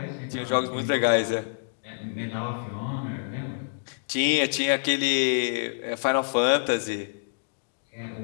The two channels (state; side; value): silent; right; digital silence